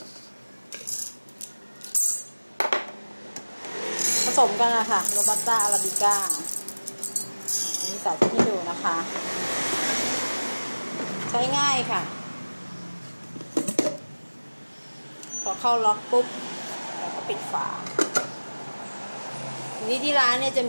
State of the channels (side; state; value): both; inverted; correlation -1.00